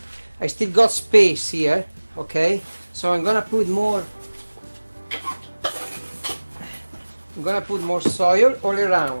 I still got space here. Okay, so I'm gonna put more soil all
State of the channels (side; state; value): both; inverted; correlation -1.00